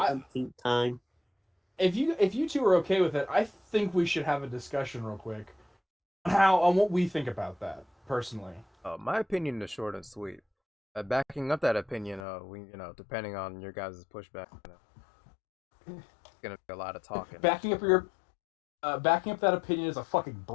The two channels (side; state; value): right; drops out; at 12.2 s